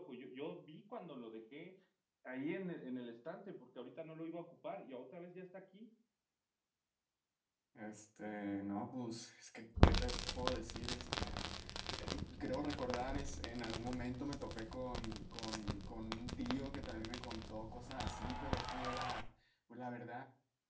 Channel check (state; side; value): identical; both; correlation 1.00